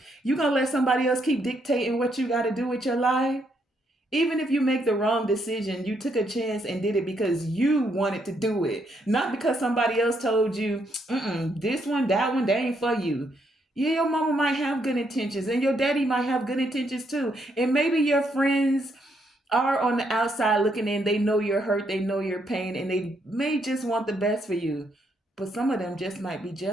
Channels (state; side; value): normal; both; correlation 0.75